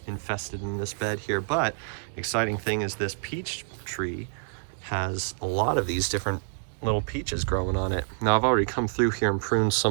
infested in this bed here, but exciting thing is this peach tree has a lot of these different little peaches growing on it. Now I've already come through here and pruned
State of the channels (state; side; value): silent; left; digital silence